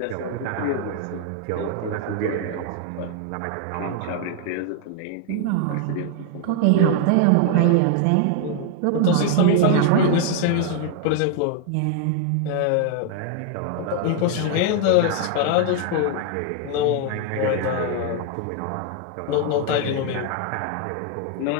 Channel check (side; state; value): both; different; correlation 0.00